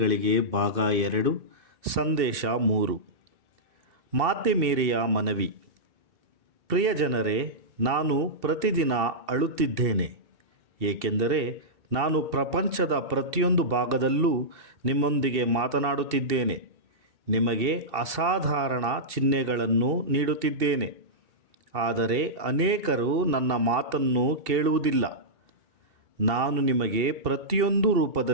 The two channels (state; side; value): late; left; 2.7 ms